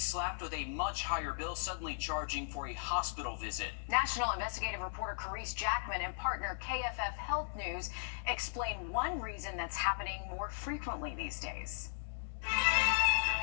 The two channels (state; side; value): silent; right; digital silence